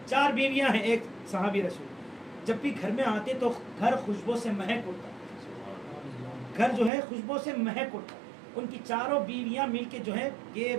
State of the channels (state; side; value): drops out; left; at 6.9 s